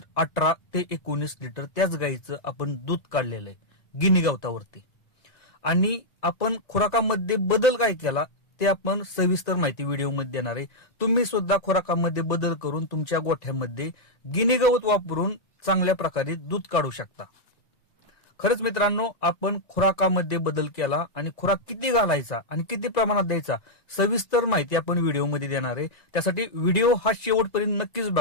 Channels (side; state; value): right; late; 1.9 ms